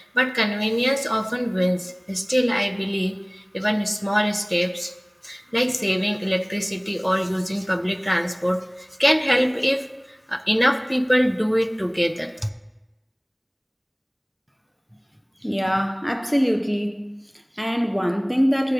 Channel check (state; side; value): identical; both; correlation 1.00